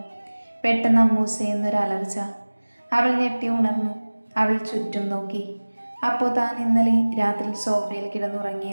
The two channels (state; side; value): inverted; both; correlation -1.00